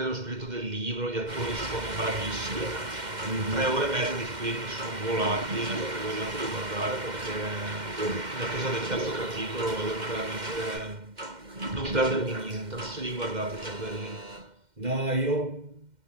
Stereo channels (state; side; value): late; left; 2.1 ms